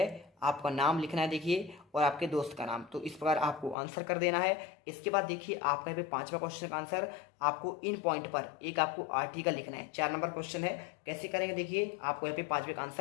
आपका नाम लिखना है देखिए, और आपके दोस्त का नाम। तो इस प्रकार आपको आंसर कर देना है। इसके बाद देखिए आपका यहाँ पे 5वां क्वेश्चन का आंसर, आपको इन पॉइंट पर एक आपको आर्टिकल लिखना है। 4 नंबर क्वेश्चन है। कैसे करेंगे देखिए, आपको यहाँ पे 5वें का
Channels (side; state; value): right; drops out; at 3.8 s